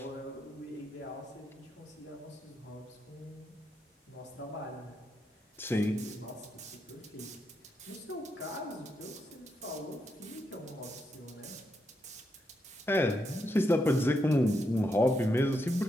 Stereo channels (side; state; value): both; normal; correlation 0.81